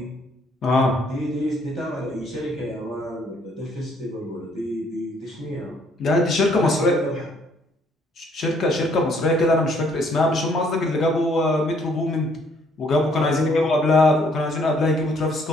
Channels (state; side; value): normal; both; correlation 0.65